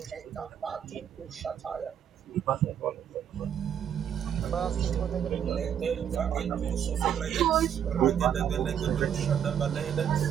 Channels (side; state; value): left; quieter; 9.0 dB